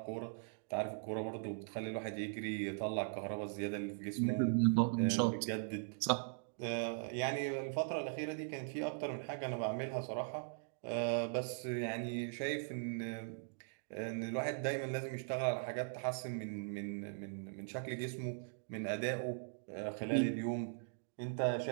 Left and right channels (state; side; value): silent; left; digital silence